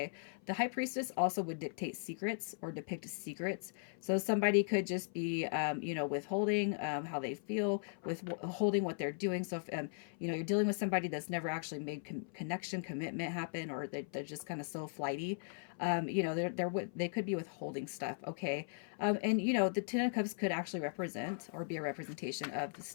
the High Priestess also would dictate secrets or depict secrets. So somebody could just be, you know, withholding how they feel, withholding what they're doing. So if you know, you're dealing with somebody that's never actually made connection, commitment happen, or they're just kind of so flighty. You know, they could be withholding stuff. Okay, and you know, the Ten of Cups could actually represent or be a representation of the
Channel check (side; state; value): right; silent; 52 dB below the other